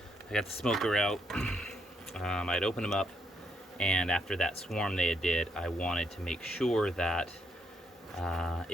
I got the smoker out. I'd opened them up, and after that swarm they did, I wanted to make sure that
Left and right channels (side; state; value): both; normal; correlation 0.75